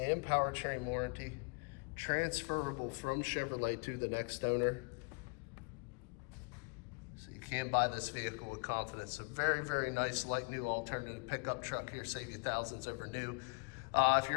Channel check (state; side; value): quieter; right; 32.9 dB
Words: powertrain warranty, transferable from Chevrolet to the next owner. So you can buy this vehicle with confidence. A very, very nice like new alternative pickup truck here, save you thousands over new. If